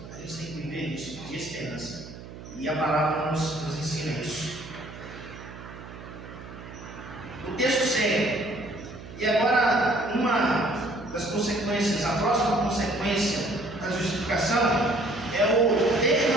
A gente tem que viver disso, de esperança. E a palavra nos ensina isso. O texto segue. E agora, uma das consequências, a próxima consequência da justificação é o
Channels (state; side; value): noise; right; hum, 14 dB below the sound